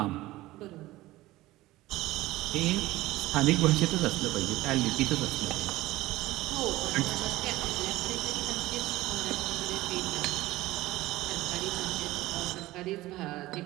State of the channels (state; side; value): quieter; left; 17.7 dB